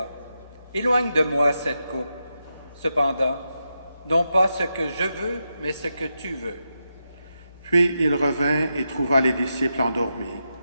Éloigne de moi cette coupe. Cependant, non pas ce que je veux, mais ce que tu veux. » Puis il revint et trouva les disciples endormis.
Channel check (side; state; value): both; inverted; correlation -0.86